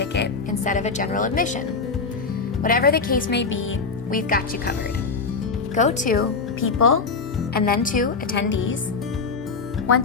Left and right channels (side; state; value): right; quieter; 4.6 dB